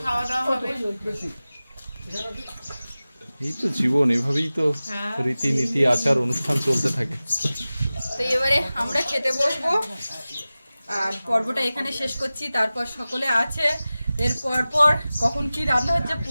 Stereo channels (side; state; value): both; inverted; correlation -0.97